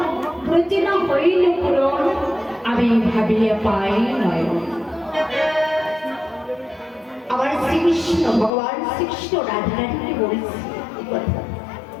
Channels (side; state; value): right; drops out; at 8.5 s